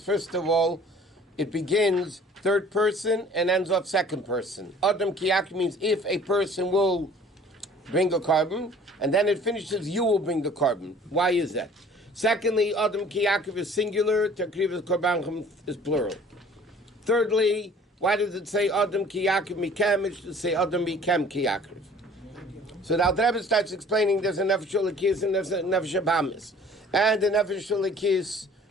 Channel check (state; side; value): normal; both; correlation 0.51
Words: of all, it begins third person and ends off second person. Adam Kiyakim means if a person will bring a carbon, and then it finishes, you will bring the carbon. Why is that? Secondly, Adam Kiyakim is singular, Takriv Korban is plural. Thirdly, why does it say Adam Ki Yaakov Mikem? It should say Adam Mikem Ki Yaakov. So now the Rabbi starts explaining there's a Nefesh Lakis and there's a Nefesh Habamis. And the Nefesh Lakis